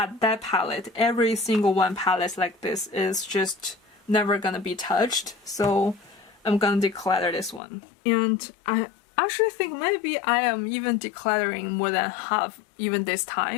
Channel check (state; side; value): drops out; right; at 7.6 s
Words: that palette, every single one palette like this is just never gonna be touched. So I'm gonna declutter this one. And I actually think maybe I am even decluttering more than half even this